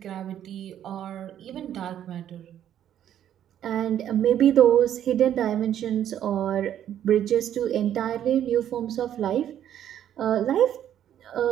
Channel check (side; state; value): left; quieter; 10.6 dB